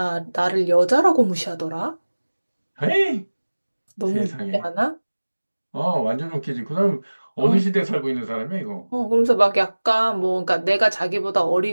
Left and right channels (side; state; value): both; inverted; correlation -1.00